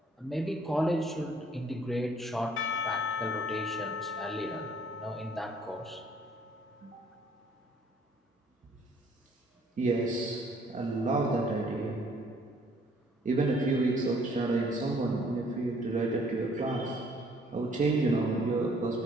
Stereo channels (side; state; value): both; normal; correlation 0.61